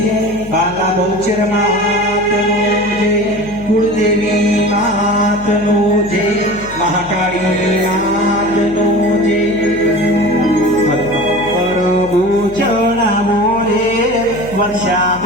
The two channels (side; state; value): left; noise; hum, 16 dB below the sound